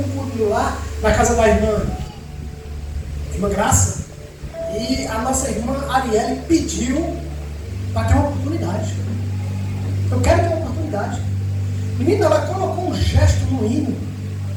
um culto lá, na casa da irmã Graça. E a nossa irmã Arielle pediu para ter uma oportunidade. Eu quero ter uma oportunidade. Menina, ela colocou um gesto no hino.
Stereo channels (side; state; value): both; identical; correlation 1.00